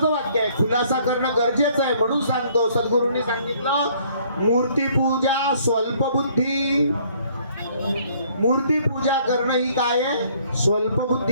वाक्य आहे, खुलासा करणं गरजेचं आहे म्हणून सांगतो. सद्गुरूंनी सांगितलं, मूर्ती पूजा स्वल्प बुद्धी. मूर्ती पूजा करणं ही काय आहे, स्वल्प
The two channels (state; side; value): inverted; both; correlation -0.61